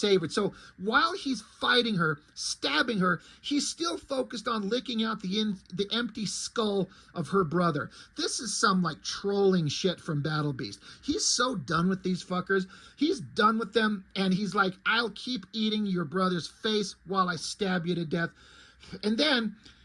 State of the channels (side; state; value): both; identical; correlation 1.00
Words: So while he's fighting her, stabbing her, he's still focused on licking out the empty skull of her brother. This is some, like, trolling shit from Battle Beast. He's so done with these fuckers. He's done with them, and he's like, I'll keep eating your brother's face while I stab you to death. And then